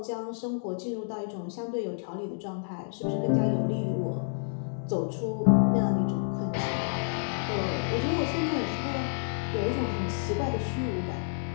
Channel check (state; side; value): silent; right; digital silence